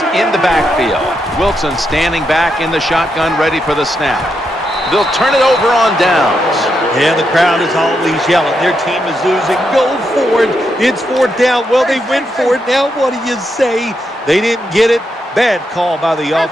in the backfield. Wilson standing back in the shotgun, ready for the snap. They'll turn it over on downs. Yeah, the crowd is always yelling. Their team is losing. Go for it. It's 4th down. Well, they went for it. Now what do you say? They didn't get it. Bad call by the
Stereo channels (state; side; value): normal; both; correlation 0.82